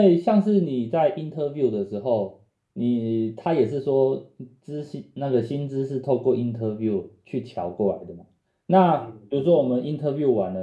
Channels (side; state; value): both; identical; correlation 1.00